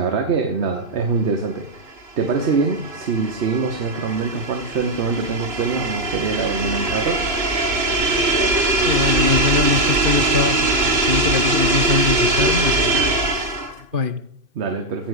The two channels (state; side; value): late; left; 3.0 ms